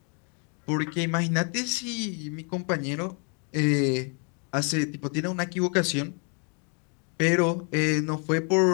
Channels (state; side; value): quieter; right; 37.8 dB